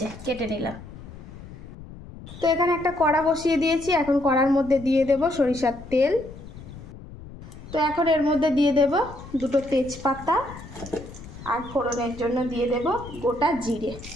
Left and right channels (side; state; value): left; noise; rumble, 15 dB below the sound